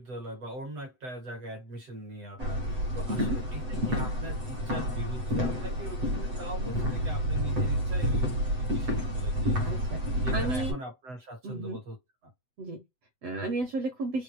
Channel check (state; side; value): late; left; 7.9 ms